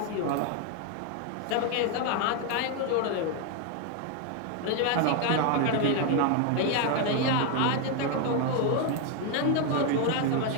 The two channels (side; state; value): both; different; correlation 0.01